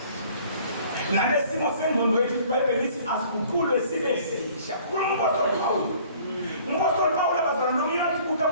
Nalesimo sengqondo yethu iBhayibheli lithi asiguqulwe sibe sisha. Kumpostoli Pawulo. Umpostoli Pawulo abazalwane nomyeni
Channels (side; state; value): both; inverted; correlation -0.54